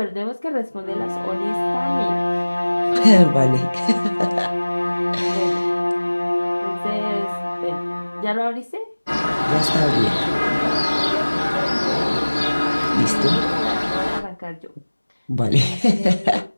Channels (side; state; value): both; inverted; correlation -1.00